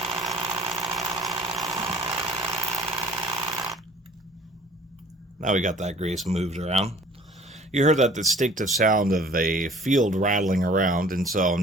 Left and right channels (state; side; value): normal; both; correlation 0.51